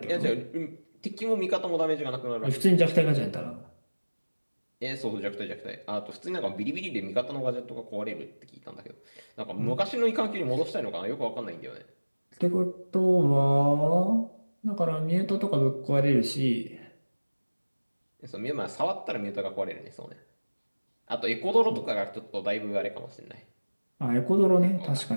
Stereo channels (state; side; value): inverted; both; correlation -1.00